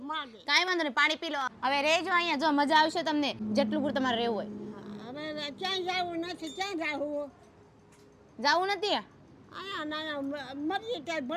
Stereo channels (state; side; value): identical; both; correlation 1.00